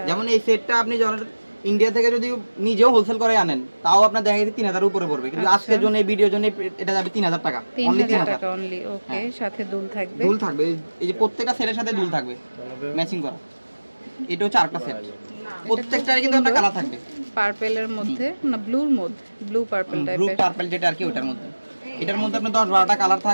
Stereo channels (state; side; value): inverted; both; correlation -1.00